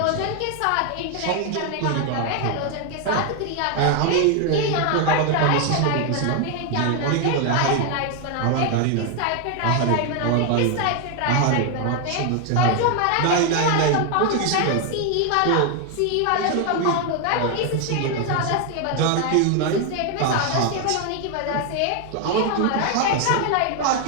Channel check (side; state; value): both; different; correlation 0.01